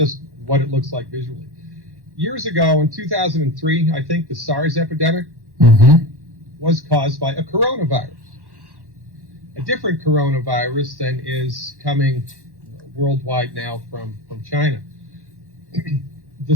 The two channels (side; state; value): left; late; 1.1 ms